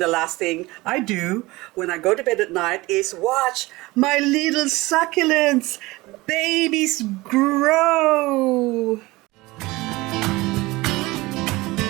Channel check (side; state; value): left; quieter; 20.9 dB